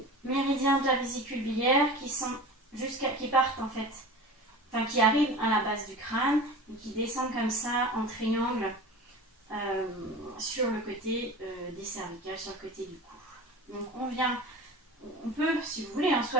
méridiens de la vésicule biliaire qui partent en fait. Enfin, qui arrivent à la base du crâne et qui descendent comme ça en triangle sur le côté des cervicales, sur le côté du cou. Donc on peut, si vous voulez, hein, soit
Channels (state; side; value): normal; both; correlation 0.35